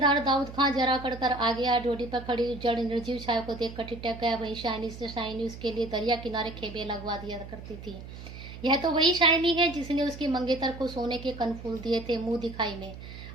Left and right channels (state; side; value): noise; right; hum, 13 dB below the sound